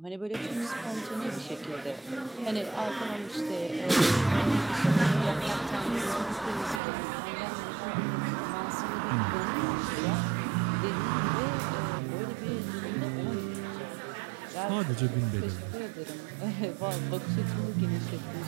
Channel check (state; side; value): drops out; left; at 6.8 s